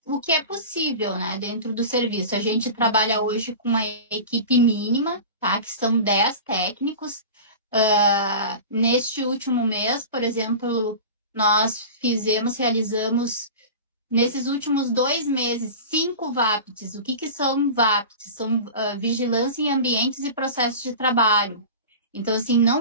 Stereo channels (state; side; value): inverted; both; correlation -0.33